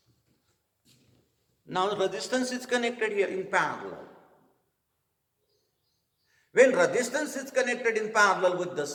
Now resistance is connected here in parallel. When resistance is connected in parallel with the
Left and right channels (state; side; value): identical; both; correlation 1.00